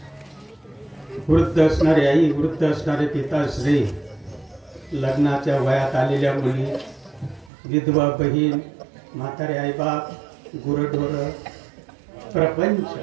वृद्ध असणारे आई, वृद्ध असणारे पिताश्री, लग्नाच्या वयात आलेल्या मुली, विधवा बहीण, म्हातारे आईबाप, गुरढोर, प्रपंच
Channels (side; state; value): left; drops out; at 7.5 s